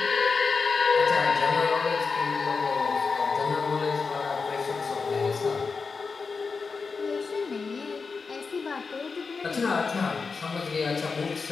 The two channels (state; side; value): quieter; right; 4.8 dB